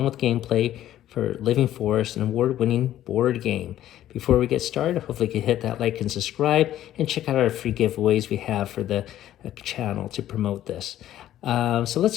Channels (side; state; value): right; quieter; 12.6 dB